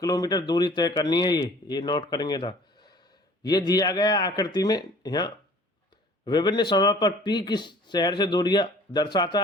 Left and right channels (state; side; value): normal; both; correlation 0.50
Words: किलोमीटर दूरी तय करनी है, ये नोट करेंगे था। ये दिया गया आकृति में यहाँ विभिन्न समय पर पी की शहर से दूरियां दर्शाता